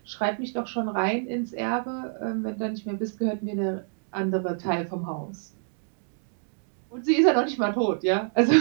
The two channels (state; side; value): silent; left; 60 dB below the other